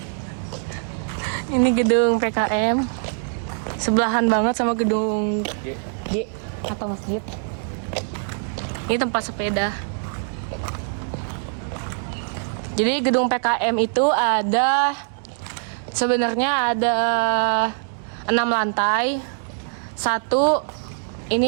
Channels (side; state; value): left; silent; digital silence